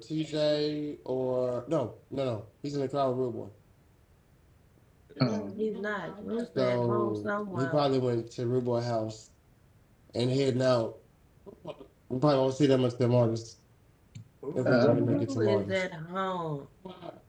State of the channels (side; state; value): both; identical; correlation 1.00